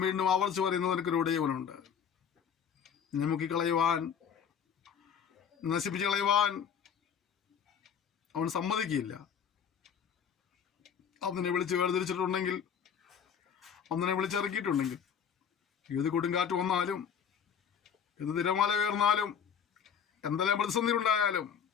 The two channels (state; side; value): quieter; right; 7.6 dB